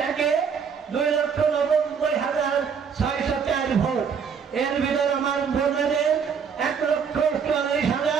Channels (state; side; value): quieter; left; 6.6 dB